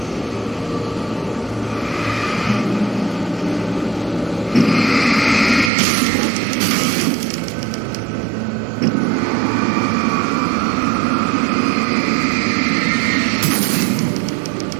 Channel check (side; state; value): left; drops out; at 5.7 s